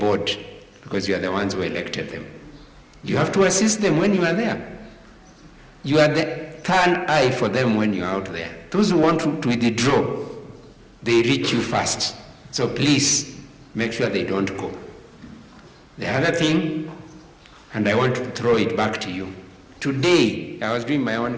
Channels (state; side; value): identical; both; correlation 1.00